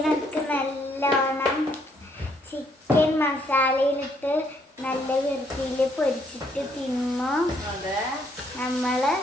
നല്ലോണം ചിക്കൻ മസാലയിലിട്ട് നല്ല വൃത്തിയിൽ പൊരിച്ചിട്ട് തിന്നു നമ്മള്.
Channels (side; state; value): both; normal; correlation 0.70